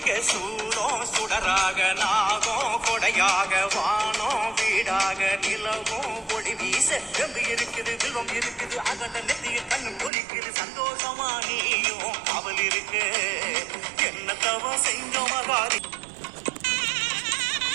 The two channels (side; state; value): left; drops out; at 10.1 s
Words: சூடம் சுடராக, நாகம் கொடையாக, வானம் வீடாக, நிலவும் ஒளி வீச வெம்பு இருக்குது, வில்வம் இருக்குது, அகண்ட நெத்திய கண்ணு குளிக்குது, சந்தோஷமா நீயும் காவல் இருக்கு, என்ன தவம் செஞ்சோம் மகாரி.